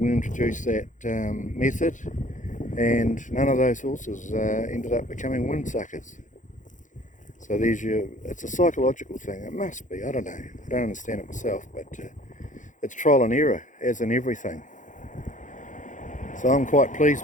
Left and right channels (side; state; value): right; late; 0.37 ms